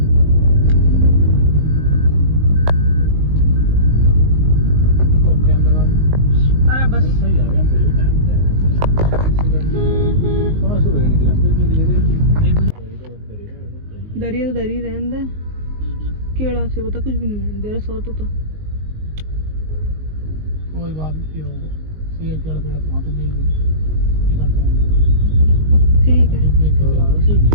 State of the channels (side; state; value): left; late; 19 ms